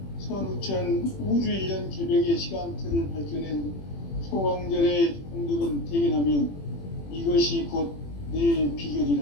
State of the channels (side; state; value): right; late; 21 ms